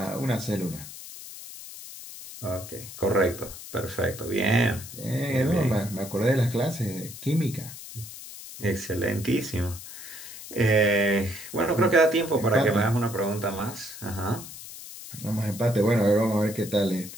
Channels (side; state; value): left; noise; hiss, 13 dB below the sound